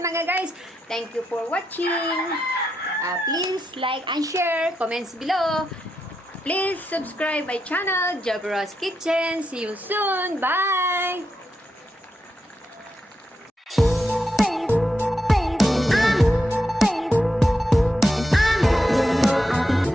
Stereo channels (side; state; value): both; normal; correlation 0.84